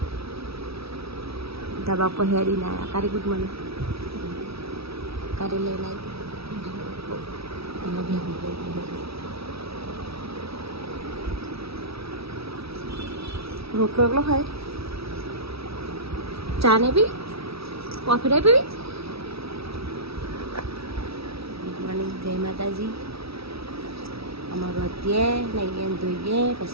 ધાબા પર હેરી ના આવ્યા. કારી ગુડ મોર્નિંગ કારી લઈને આવી રોટલો એકલો ખાય. ચા ને પી કોફી ને પીવી. ગુડ મોર્નિંગ, જય માતાજી. અમારું અત્યારે નહીં ધોઈએ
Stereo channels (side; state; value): left; late; 0.77 ms